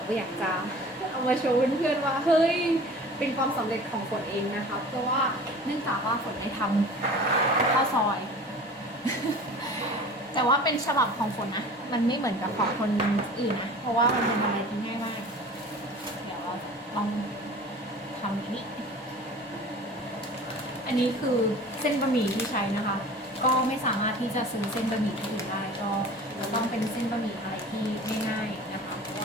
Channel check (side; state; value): both; normal; correlation 0.41